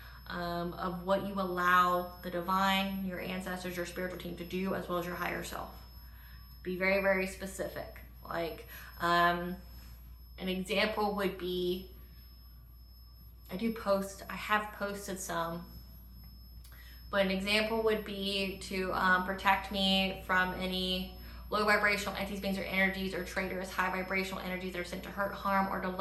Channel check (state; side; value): identical; both; correlation 1.00